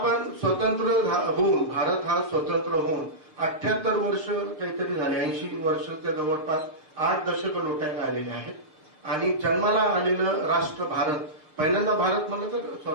स्वतंत्र होऊन, भारत हा स्वतंत्र होऊन 78 वर्ष काहीतरी झाले, 80 वर्षाच्या जवळपास 8 दशक लोटायला आलेले आहेत. आणि जन्माला आलेलं राष्ट्र भारत, पहिल्यांदा भारत म्हणलं तर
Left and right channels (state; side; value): late; left; 6.5 ms